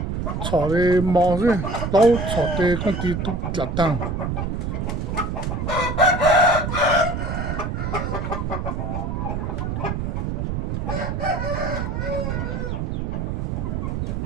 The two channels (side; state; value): right; noise; rumble, 2 dB below the sound